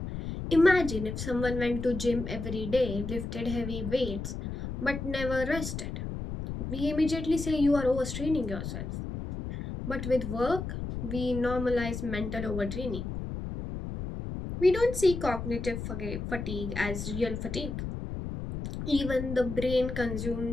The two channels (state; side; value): noise; left; rumble, 6 dB below the sound